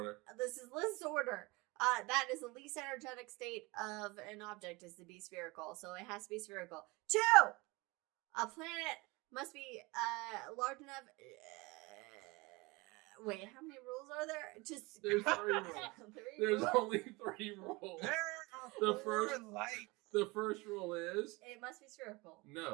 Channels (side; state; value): left; quieter; 24.2 dB